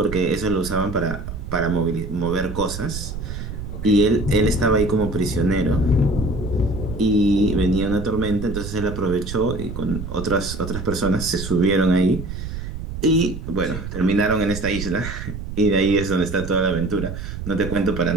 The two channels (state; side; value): noise; right; rumble, 8 dB below the sound